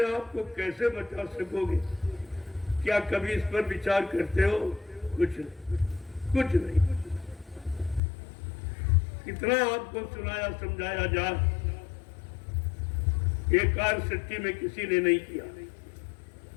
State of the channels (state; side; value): drops out; right; at 8.0 s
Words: आप को कैसे बचा सकोगे? क्या कभी इस पर विचार करते हो? कुछ नहीं। कितना आपको सुनाया समझाया जाए, ये कार्य सच्ची में किसी ने नहीं किया।